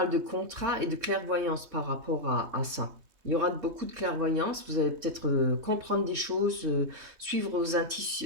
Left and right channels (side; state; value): left; late; 3.2 ms